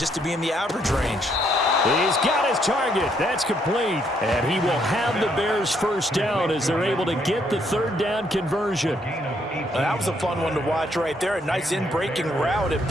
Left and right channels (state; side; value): normal; both; correlation 0.71